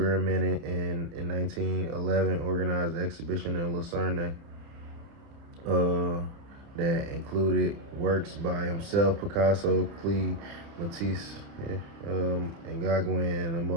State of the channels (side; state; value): left; late; 30 ms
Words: and in 1911, organized an exhibition in Lucerne that included works by himself, Picasso, Klee, Matisse, and Gauguin,